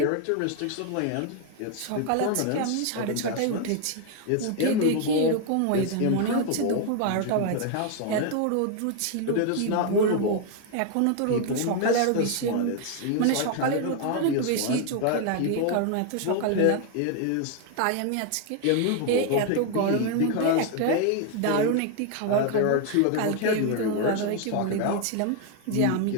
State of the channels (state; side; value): different; both; correlation 0.00